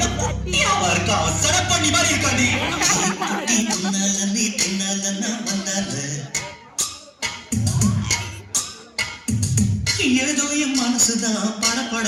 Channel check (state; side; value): identical; both; correlation 1.00